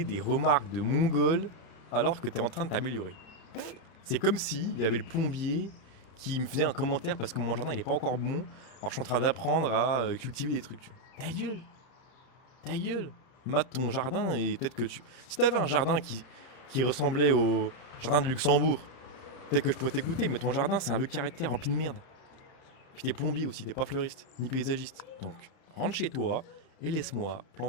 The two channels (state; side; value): late; right; 31 ms